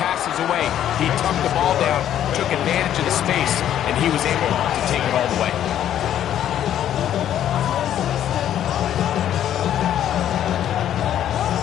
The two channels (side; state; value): right; quieter; 10.9 dB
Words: away. He tucked the ball down, took advantage of the space, and he was able to take it all the way.